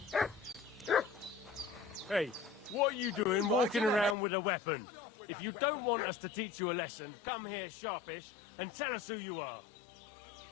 Hey, what are you doing walking around with a weapon? Sod off with if that you weapon. don't want us to teach you a lesson, come here sharpish and tell us who you are.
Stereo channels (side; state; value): right; drops out; at 4.2 s